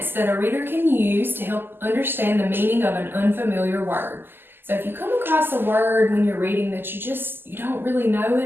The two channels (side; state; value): left; late; 0.099 ms